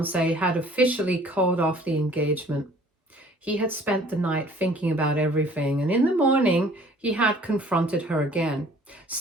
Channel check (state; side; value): normal; both; correlation 0.54